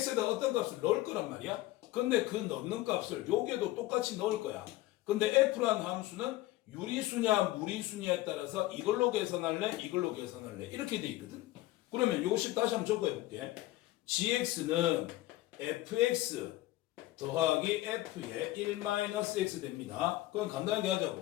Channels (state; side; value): quieter; right; 17.0 dB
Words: 어떤 값을 넣을 거란 말이야. 근데 그 넣는 값을 여기에도 똑같이 넣을 거야. 근데 f라는 함수는 유리수냐 무리수냐에 따라서 이걸로 계산할래 이걸로 계산할래 이렇게 돼 있거든. 그러면 요식 다시 한번 적어 볼게. gx는 fx 더하기 f의 1-x 됩니다. 그럼 간단하게